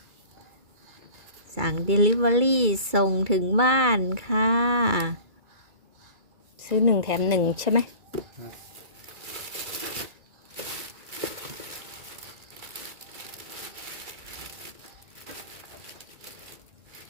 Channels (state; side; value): late; left; 2.3 ms